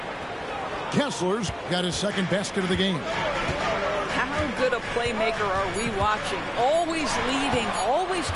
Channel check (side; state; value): both; identical; correlation 1.00